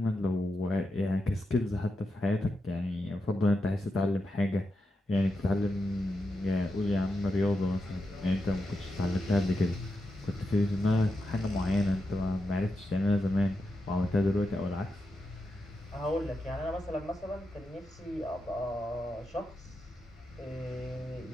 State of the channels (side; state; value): both; normal; correlation 0.87